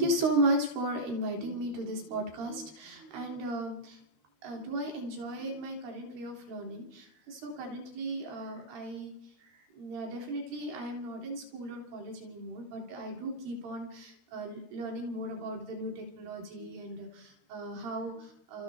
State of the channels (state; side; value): late; left; 13 ms